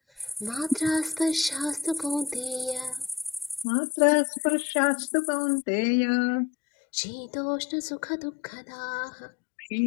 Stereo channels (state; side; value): drops out; right; at 3.7 s